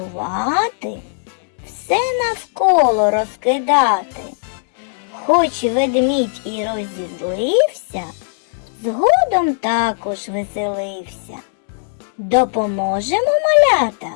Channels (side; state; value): right; silent; digital silence